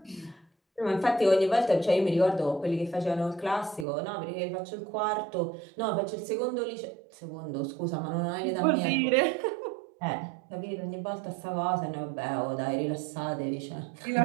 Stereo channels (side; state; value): left; drops out; at 3.9 s